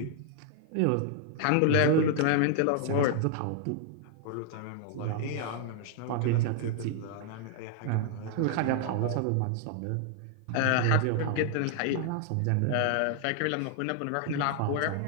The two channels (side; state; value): both; different; correlation 0.00